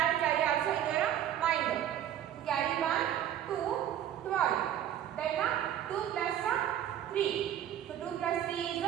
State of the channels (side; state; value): left; quieter; 10.8 dB